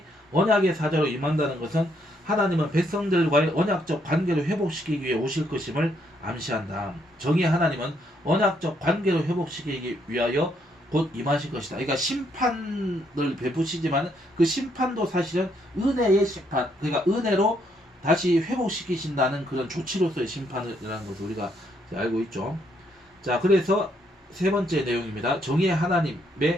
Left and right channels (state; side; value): normal; both; correlation 0.72